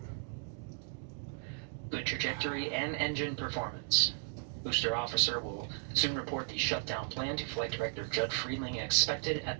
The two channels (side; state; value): left; silent; 54 dB below the other